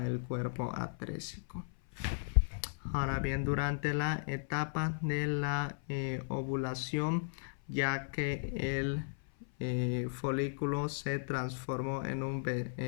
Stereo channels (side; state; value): right; silent; 54 dB below the other